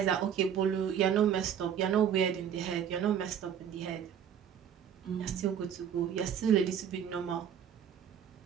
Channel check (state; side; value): quieter; left; 8.6 dB